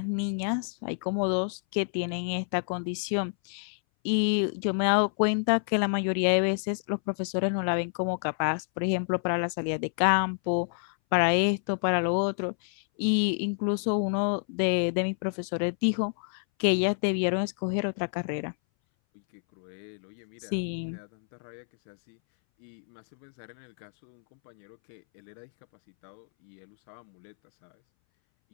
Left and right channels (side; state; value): right; silent; 59 dB below the other